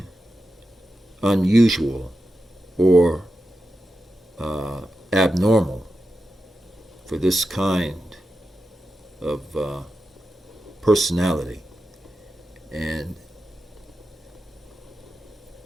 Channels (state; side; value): normal; both; correlation 0.90